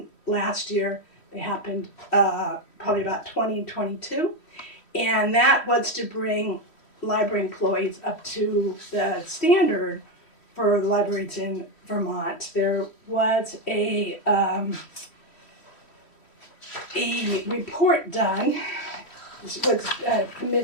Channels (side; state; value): right; late; 3.1 ms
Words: last year. They happened probably about 2022. And that was to bring library employees up to the standard for libraries in Vermont. There was a report done. This was